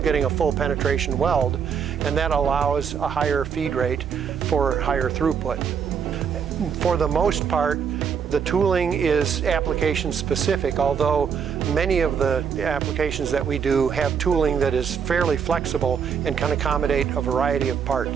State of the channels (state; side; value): quieter; left; 7.1 dB